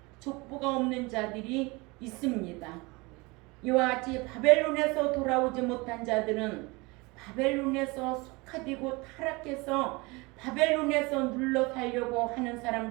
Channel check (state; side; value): quieter; left; 25.4 dB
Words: 족보가 없는 자들이 있습니다. 이와 같이 바벨론에서 돌아오지 못한 자들은 바벨론에서 속하되고 타락해서 바벨론에서 눌러 살려고 하는